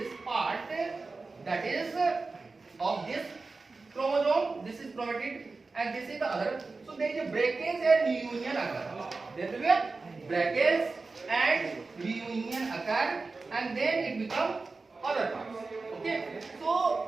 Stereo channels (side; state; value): left; quieter; 3.9 dB